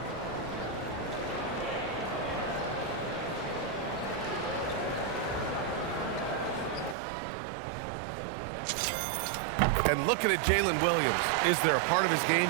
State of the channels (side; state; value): left; drops out; at 7.0 s